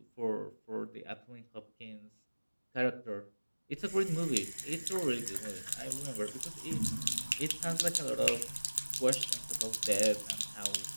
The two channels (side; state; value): both; inverted; correlation -1.00